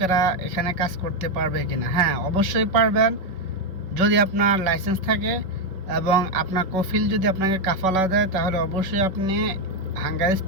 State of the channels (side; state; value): left; late; 5.4 ms